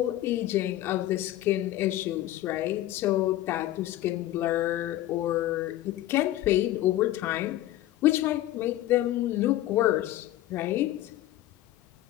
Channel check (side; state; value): right; quieter; 14.7 dB